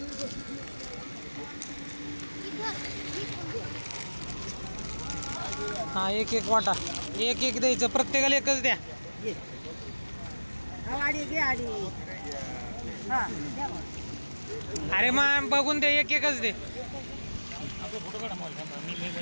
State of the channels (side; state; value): both; inverted; correlation -1.00